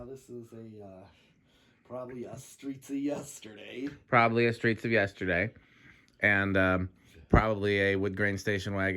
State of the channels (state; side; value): identical; both; correlation 1.00